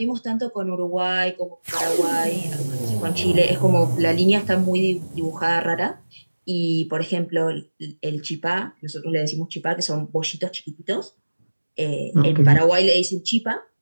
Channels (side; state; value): both; inverted; correlation -1.00